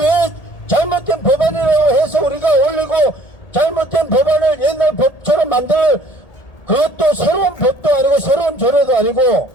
잘못된 법안이라고 해서 우리가 올리고, 잘못된 법안을 옛날 법처럼 그것도 새로운 법도 아니고 새로운 조례도 아니고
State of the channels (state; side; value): late; right; 1.8 ms